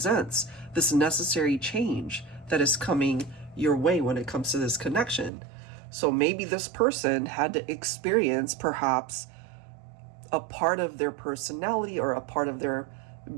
this necessary change that is coming your way when it comes to this connection. So maybe this person had to experience perhaps a part of their personality or a part of their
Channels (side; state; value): left; drops out; at 5.3 s